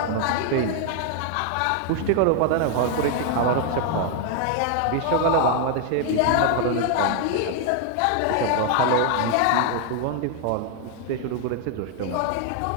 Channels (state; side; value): different; both; correlation 0.00